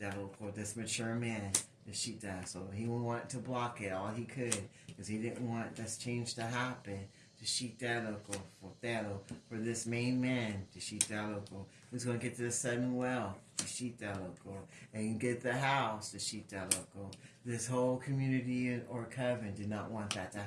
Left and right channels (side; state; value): both; identical; correlation 1.00